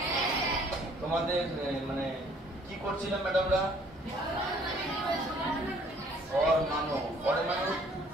তোমাদের মানে কি করছিলাম ম্যাডামরা? পরমাণু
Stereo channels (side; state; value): both; normal; correlation 0.59